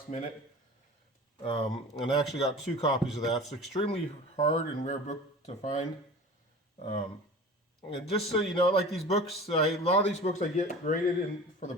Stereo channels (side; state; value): both; normal; correlation 0.38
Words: minute. And I actually got 2 copies of that. It's an extremely hard and rare book to find. And just so you know, like these books, a lot of these books I get graded for the